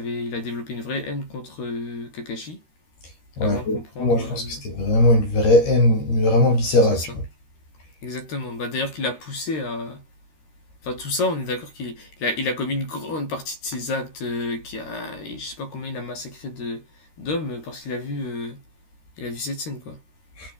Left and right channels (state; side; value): late; right; 13 ms